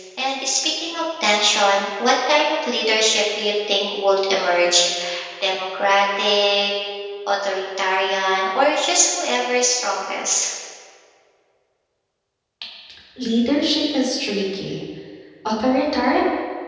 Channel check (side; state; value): both; identical; correlation 1.00